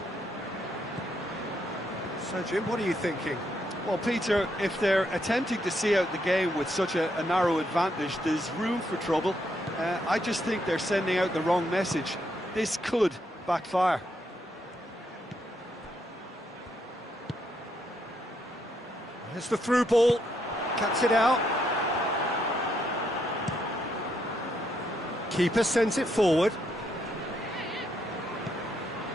So, Jim, what are you thinking? Well, Peter, if they're attempting to see out the game with such a narrow advantage, there's room for trouble. I just think they're sending out the wrong message. This could backfire. There's the through ball. Cuts it out. Keeper sends it forward.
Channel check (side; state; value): both; normal; correlation 0.77